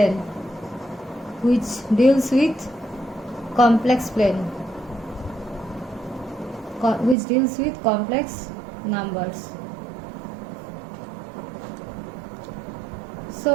which deals with complex plane, which deals with complex numbers.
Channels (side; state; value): left; drops out; at 7.2 s